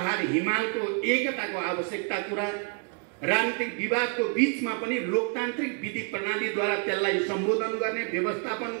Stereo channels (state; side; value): quieter; left; 38.5 dB